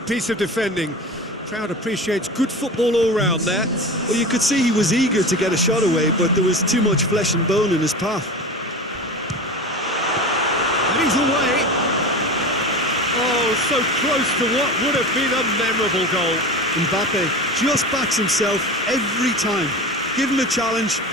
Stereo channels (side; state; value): both; normal; correlation 0.30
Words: piece of defending. Crowd appreciates good football all round there. Well, you could see he was eager to get a shot away, but there was too much flesh and bone in his path. And he's away. Oh, so close to what would have been a memorable goal. Mbappe just backs himself every time. Give him a challenge